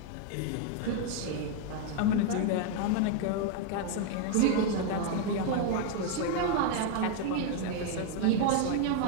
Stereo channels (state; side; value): different; both; correlation 0.01